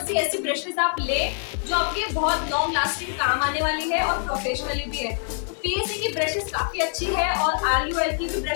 सी ऐसी ब्रशेस आप ले जो आपके बहुत लॉन्ग लास्टिंग काम आने वाली है और प्रोफेशनली भी है। तो पीएससी की ब्रशेस काफ़ी अच्छी है और RUL की भी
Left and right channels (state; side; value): silent; right; 60 dB below the other